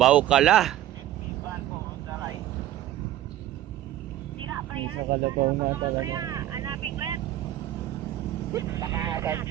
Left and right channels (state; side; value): quieter; left; 13.0 dB